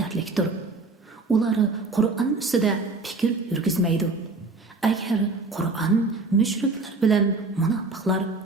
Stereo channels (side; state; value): left; quieter; 3.6 dB